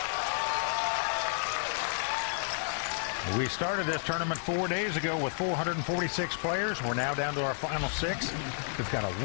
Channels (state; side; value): silent; right; 57 dB below the other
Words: We started this tournament 4 days ago with 446 players. We're now down to our final 6. We've got a